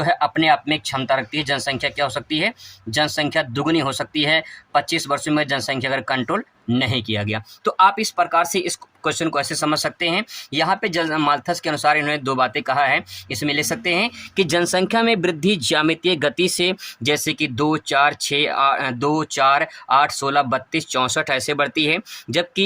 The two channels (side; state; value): both; identical; correlation 1.00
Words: है अपने आप में क्षमता रखती है। जनसंख्या क्या हो सकती है? जनसंख्या दुगनी हो सकती है 25 वर्षों में जनसंख्या अगर कंट्रोल नहीं किया गया। तो आप इस प्रकार से इस क्वेश्चन को ऐसे समझ सकते हैं। यहाँ पे माल्थस के अनुसार इन्होंने 2 बातें कहा है, इसमें ले सकते हैं कि जनसंख्या में वृद्धि ज्यामितीय गति से, जैसे कि 2 4 6 2 4 8 16 32 64 ऐसे बढ़ती है,